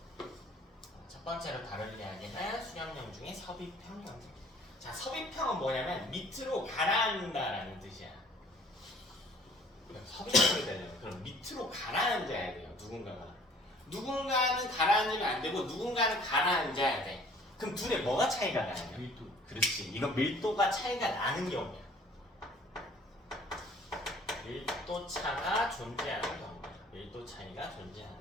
첫 번째로 다룰 이야기는 수렴형 중에 섭입형 경계. 자, 섭입형은 뭐냐면 밑으로 가라앉는다라는 뜻이야. 섭입형이 되려면 그럼 밑으로 가라앉아야 돼요. 누군가는 가라앉으면 안 되고 누군가는 가라앉아야 돼. 그럼 둘의 뭐가 차이가 나냐? 밀도. 그렇지. 이거 밀도가 차이가 나는 경우야. 밀도 차가 존재하는 경우. 밀도 차이가 존재하는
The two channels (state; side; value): normal; both; correlation 0.53